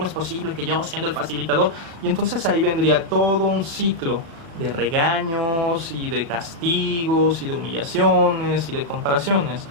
es posible que yo siendo el facilitador? Y entonces ahí vendría todo un ciclo de regaños y de castigos y de humillaciones y de comparaciones,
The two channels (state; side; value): late; left; 36 ms